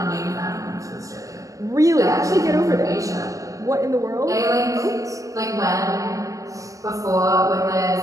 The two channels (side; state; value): left; late; 0.16 ms